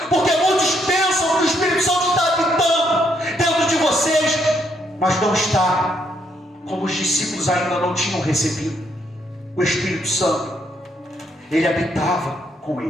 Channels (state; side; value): normal; both; correlation 0.73